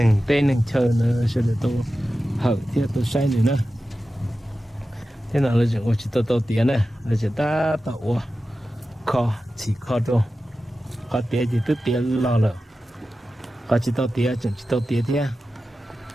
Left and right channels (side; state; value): both; normal; correlation 0.93